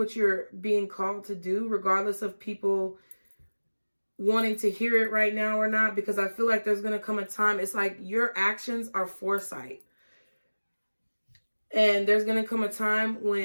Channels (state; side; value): inverted; both; correlation -1.00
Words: you're being called to do, regardless of people wanting to hear it right now or not, because I feel like there's going to come a time, it's like your actions are foresight. And there's going to come a time